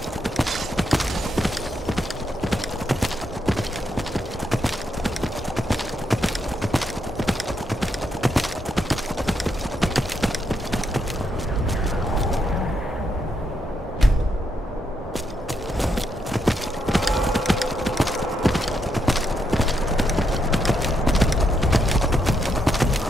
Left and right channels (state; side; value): normal; both; correlation 0.79